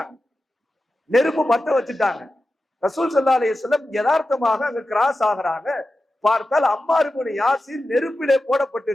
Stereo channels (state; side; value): normal; both; correlation 0.92